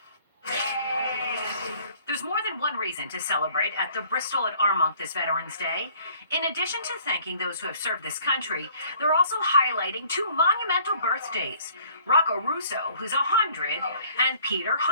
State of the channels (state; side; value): inverted; both; correlation -0.57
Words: There's more than one reason to celebrate at the Bristol at Armonk this Veterans Day. In addition to thanking those who have served this country, they're also highlighting two monumental birthdays. Rocco Russo, who's 100, and Peter